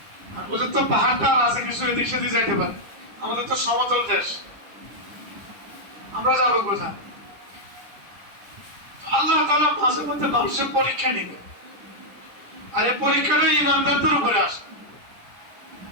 আর ওদের তো পাহাড়টা আছে, কিছু এদিক সেদিক যাইতে পারে। আমাদের তো সমতল দেশ, আমরা যাবো কোথায়? আল্লাহ তাআলা মাঝে মধ্যে মানুষের পরীক্ষা নিবে, আর এই পরীক্ষাটা ঈমানদারদের উপরে আসবে।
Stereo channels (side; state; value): left; late; 10 ms